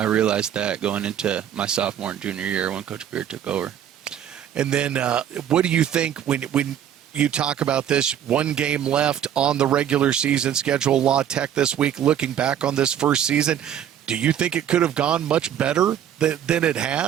realized that going into my sophomore and junior year when Coach Beard took over. And then what do you think when you talk about this, one game left on the regular season schedule, La Tech this week, looking back on this first season, do you think it could have gone much better than it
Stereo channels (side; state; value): left; quieter; 9.8 dB